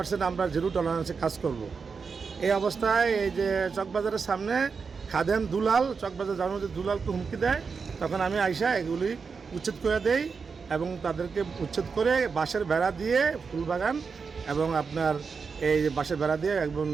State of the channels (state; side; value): quieter; left; 5.3 dB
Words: আমরা জিরো টলারেন্সে কাজ করব। এই অবস্থায় এই যে চকবাজারের সামনে খাদেম দুলাল, চকবাজার যাওয়ার মধ্যে দুলালকে হুমকি দেয়, তখন আমি আইসা এগুলি উচ্ছেদ করে দেই এবং তাদেরকে উচ্ছেদ করে বাঁশের বেড়া দিয়ে ফুলবাগান এবং আপনার এই বাঁশের বেড়া দিয়ে একদম